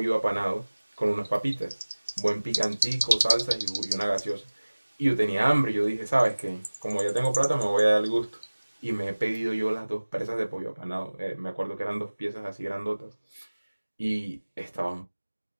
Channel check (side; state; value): both; inverted; correlation -1.00